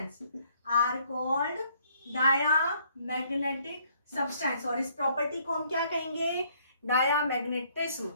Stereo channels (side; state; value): both; inverted; correlation -0.65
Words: are called diamagnetic substance. और इस प्रॉपर्टी को हम क्या कहेंगे, डायामैग्नेटिज्म,